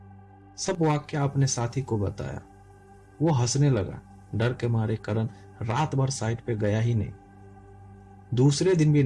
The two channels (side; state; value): both; identical; correlation 1.00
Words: सब वाक्य अपने साथी को बताया। वो हंसने लगा। डर के मारे करण रात भर साइट पे गया ही नहीं। दूसरे दिन भी